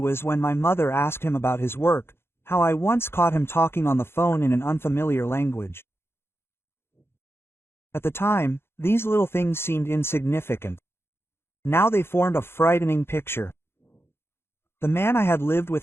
when my mother asked him about his work, how I once caught him talking on the phone in an unfamiliar language. At the time, these little things seemed insignificant. Now they formed a frightening picture. The man I had lived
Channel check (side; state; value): right; late; 0.12 ms